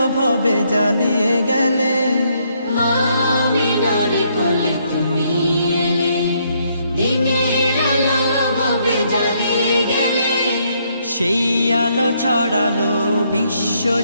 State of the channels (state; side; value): inverted; both; correlation -0.72